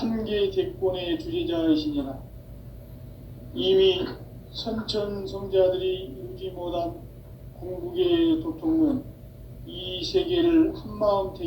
대권의 주재자이시니라. 이미 선천성자들이 이루지 못한 궁극의 도통은 이 세계를 한마음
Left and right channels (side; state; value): both; identical; correlation 1.00